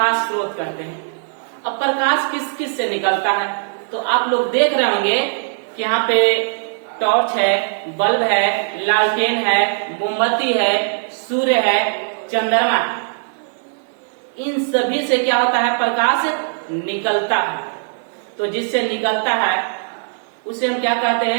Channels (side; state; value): left; silent; digital silence